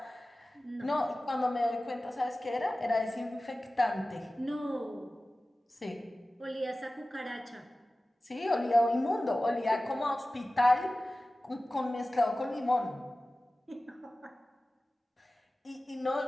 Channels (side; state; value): both; normal; correlation 0.96